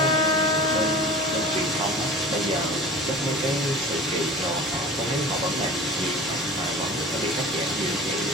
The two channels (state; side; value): normal; both; correlation 0.39